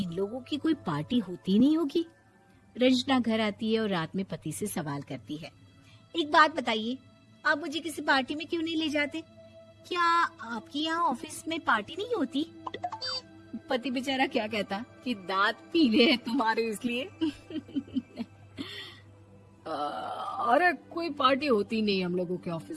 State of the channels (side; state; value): both; identical; correlation 1.00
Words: लोगों की कोई पार्टी होती नहीं होगी? रंजना घर आती है और रात में पति से सवाल करती है, एक बात बताइए, आप मुझे किसी पार्टी में क्यों नहीं ले जाते? क्या आपकी यहाँ ऑफिस में पार्टी नहीं होती? पति बेचारा क्या कहता कि दांत पीले हैं तुम्हारे इसलिए। अरे कोई पार्टी होती नहीं हम लोगों के